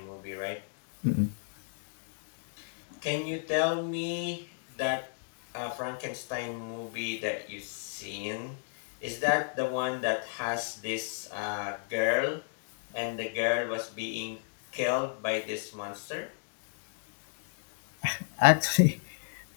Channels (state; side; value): silent; right; digital silence